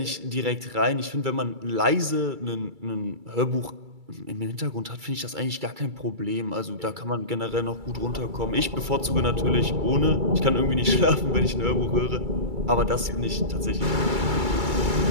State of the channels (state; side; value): late; left; 2.3 ms